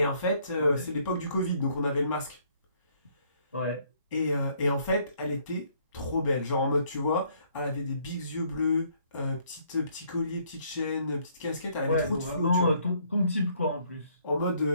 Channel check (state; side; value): inverted; both; correlation -0.66